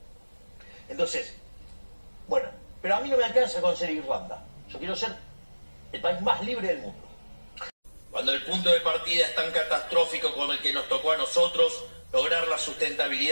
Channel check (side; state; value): both; inverted; correlation -1.00